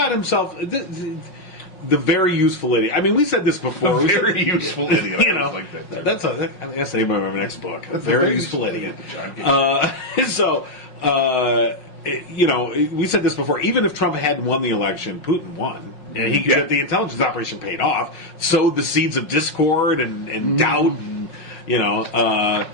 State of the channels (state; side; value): late; right; 5.5 ms